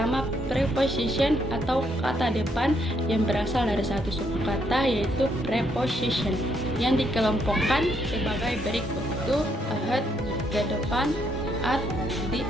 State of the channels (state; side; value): normal; both; correlation 0.73